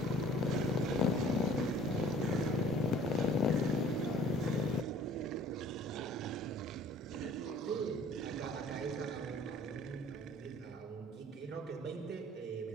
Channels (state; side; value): normal; both; correlation 0.52